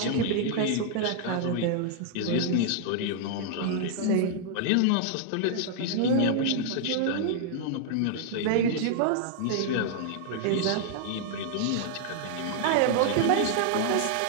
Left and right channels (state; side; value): different; both; correlation -0.01